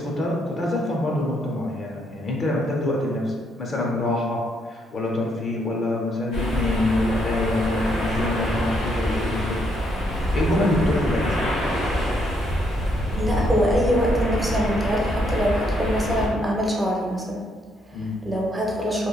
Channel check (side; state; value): both; normal; correlation 0.74